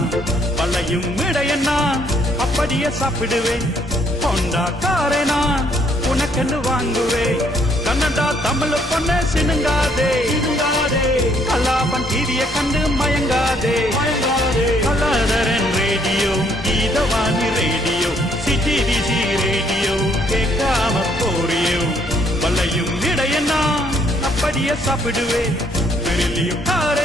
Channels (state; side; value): normal; both; correlation 0.67